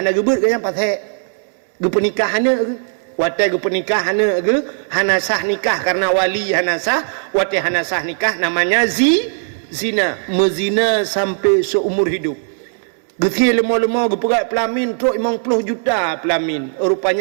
gebut ke yang pasek. Gepenikah hana ke. Watih gepenikah hana ke. Hana sah nikah karena wali hana sah. Watih hana sah nikah namanya zina. Mezina sampai seumur hidup. Geti lemah-lemah gepegat pelamin truk 50 juta pelamin.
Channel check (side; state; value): left; silent; digital silence